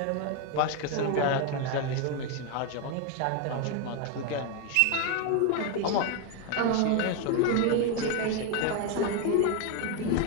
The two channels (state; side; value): different; both; correlation 0.01